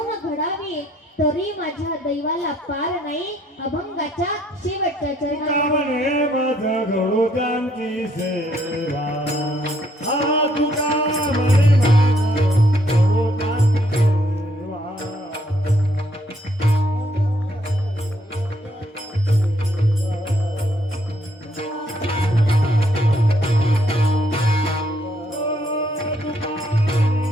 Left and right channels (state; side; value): normal; both; correlation 0.69